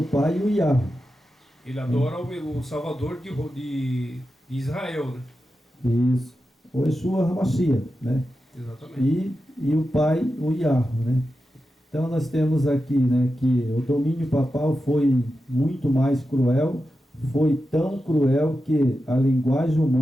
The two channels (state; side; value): normal; both; correlation 0.91